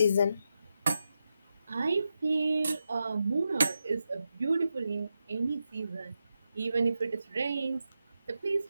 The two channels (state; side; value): inverted; both; correlation -0.88